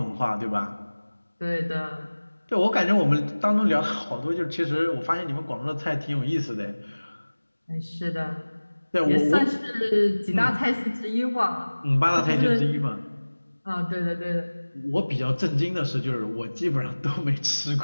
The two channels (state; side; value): inverted; both; correlation -1.00